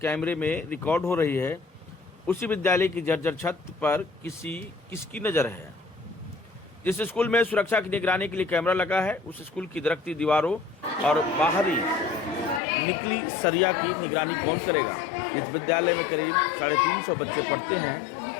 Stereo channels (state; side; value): drops out; right; at 12.6 s